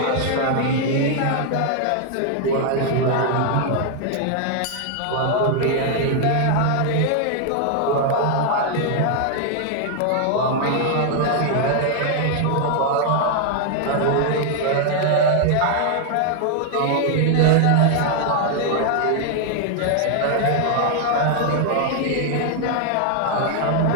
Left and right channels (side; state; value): both; different; correlation 0.00